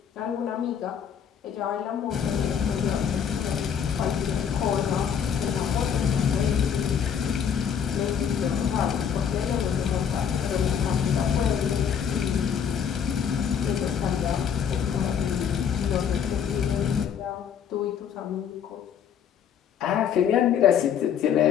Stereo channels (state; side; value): quieter; right; 7.9 dB